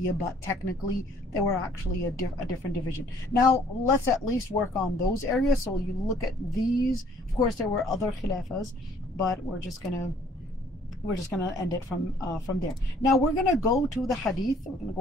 but technically they were actually a different division. Now let's at least work on those areas. So you look at these. Of course, there were other Khilafas, but we're just gonna end it from there. Now we're gonna go to the Hadith. We're gonna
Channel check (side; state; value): both; normal; correlation 0.59